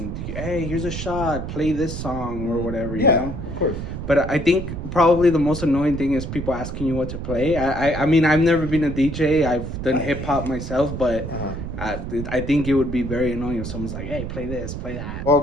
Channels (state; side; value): noise; right; rumble, 6 dB below the sound